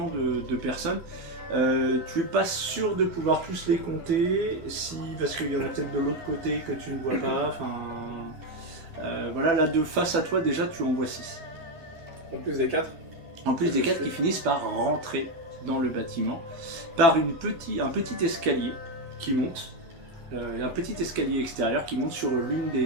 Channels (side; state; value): left; late; 12 ms